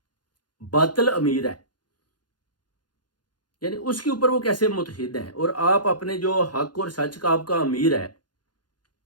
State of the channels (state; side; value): late; right; 0.70 ms